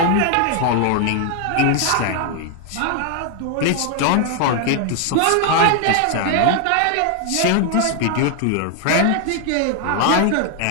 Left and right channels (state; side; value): different; both; correlation 0.00